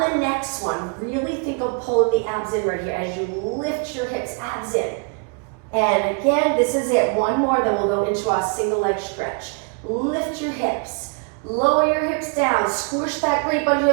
the next one, really think of pulling the abs in right here as you lift your hips, abs in. And again, this is it. 1 more, then we'll go into our single leg stretch. Lift your hips. Lower your hips down, squish that grate under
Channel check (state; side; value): quieter; left; 36.0 dB